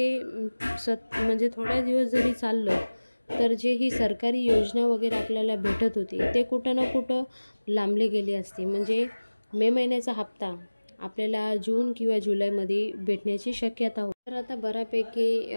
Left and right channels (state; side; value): inverted; both; correlation -1.00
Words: म्हणजे थोड्या दिवस जरी चाललं तर जे ही सरकारी योजना वगैरे आपल्याला भेटत होती ते कुठं ना कुठं लांबले गेले असते। म्हणजे मे महिन्याचा हप्ता आपल्याला जून किंवा जुलैमध्ये भेटण्याची शक्यता होती। तर आता बऱ्यापैकी